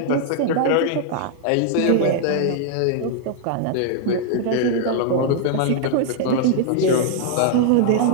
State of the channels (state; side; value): different; both; correlation 0.00